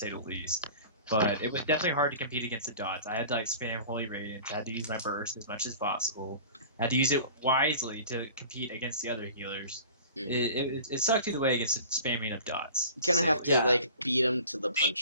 the least, but it was definitely hard to compete against the dots. I had to like spam Holy Radiance. I had to use my burst as much as possible. I had to use it wisely to compete against the other healers. Mhm. It sucked either way against the spamming of dots. You kind of have to Yeah. like beat them to the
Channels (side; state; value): both; inverted; correlation -0.43